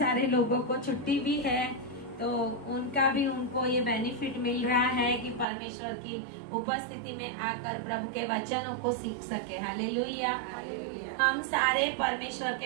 लोगों को छुट्टी भी है, तो उनको ये बेनिफिट मिल रहा है कि परमेश्वर की उपस्थिति में आकर प्रभु के वचनों को सीख सके। हालेलुया। हम सारे परमेश्वर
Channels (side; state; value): left; drops out; at 5.5 s